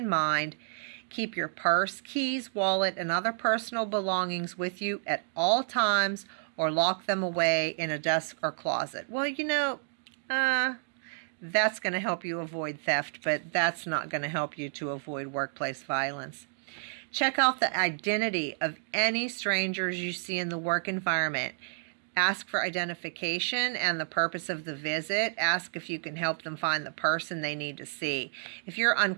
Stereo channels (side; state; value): left; silent; digital silence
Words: mind: keep your purse, keys, wallet, and other personal belongings with you at all times, or lock them away in a desk or closet. Well, that's going to help you avoid theft, but that's not going to help you to avoid workplace violence. Check out the identity of any strangers you see in the work environment. Ask for identification and the purpose of the visit. Ask if you can help them find the person they need to see. If you're